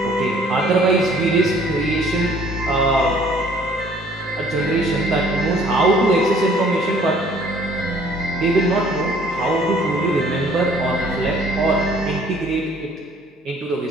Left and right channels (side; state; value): both; normal; correlation 0.57